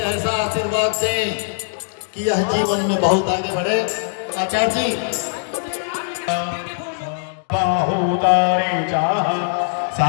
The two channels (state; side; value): silent; right; digital silence